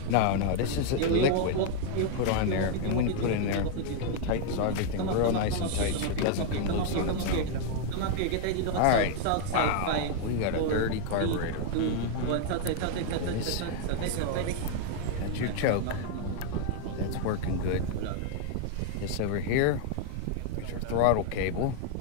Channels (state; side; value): different; both; correlation 0.00